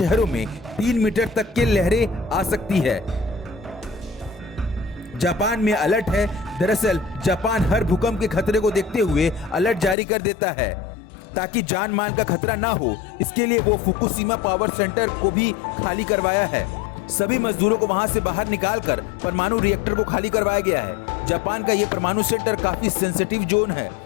में 3 मीटर तक की लहरें आ सकती है। जापान में अलर्ट है। दरअसल जापान हर भूकंप के खतरे को देखते हुए अलर्ट जारी कर देता है, ताकि जान माल का खतरा ना हो। इसके लिए वो फुकुशिमा पावर सेंटर को भी खाली करवाया है। सभी मजदूरों को वहां से बाहर निकालकर परमाणु रिएक्टर को खाली करवाया गया है। जापान का ये परमाणु सेंटर काफी सेंसिटिव जोन है,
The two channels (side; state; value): right; drops out; at 10.0 s